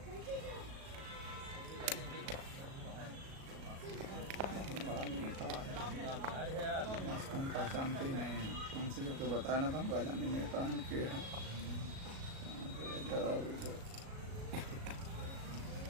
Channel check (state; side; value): late; left; 37 ms